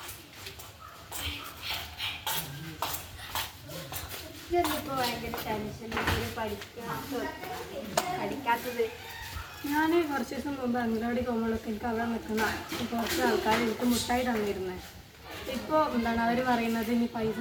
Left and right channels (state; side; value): identical; both; correlation 1.00